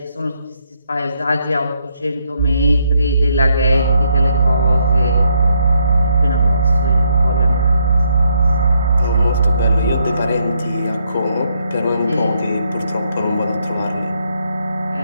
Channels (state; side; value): inverted; both; correlation -0.75